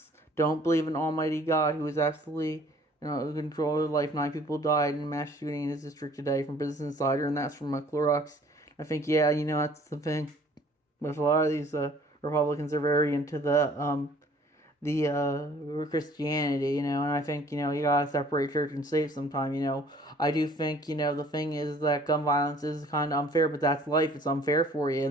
don't believe in Almighty God, who is absolutely in control of life. 9 people died in a mass shooting in his district today from Business Insider, and that's from Clorox. I think, yeah, that's the thing. With a lot of these Republicans are very into the Christianity, and I think, you gotta separate church and state sometime. I do think, the thing is that gun violence is kind of unfair, but that's life. It's unfair for you,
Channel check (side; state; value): both; normal; correlation 0.55